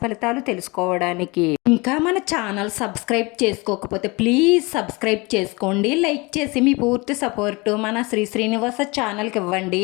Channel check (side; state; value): right; quieter; 25.7 dB